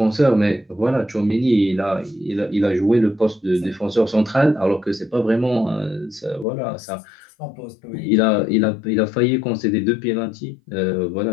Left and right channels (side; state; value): right; drops out; at 6.5 s